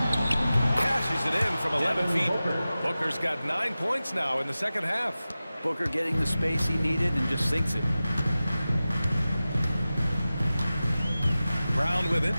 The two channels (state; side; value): inverted; both; correlation -0.96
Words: Cashes it in from 11 feet. Booker's got 9 points now in the second half. Booker getting the space he needed and just sinks it. Brown with it.